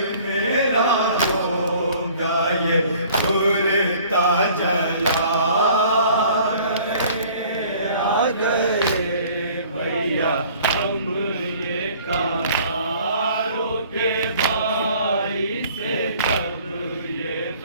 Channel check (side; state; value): both; inverted; correlation -0.53